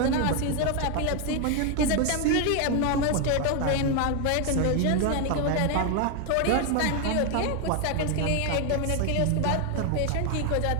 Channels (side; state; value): both; different; correlation 0.01